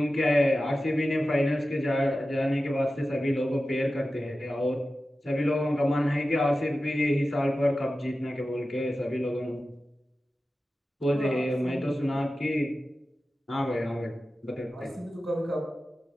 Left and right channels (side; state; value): both; normal; correlation 0.94